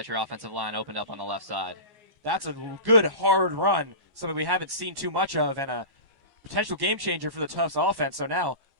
your offensive line opened up on the left side. That's a good, hard run, something we haven't seen too much of, and a potential game changer for the Tufts offense. So now,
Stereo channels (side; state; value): left; late; 14 ms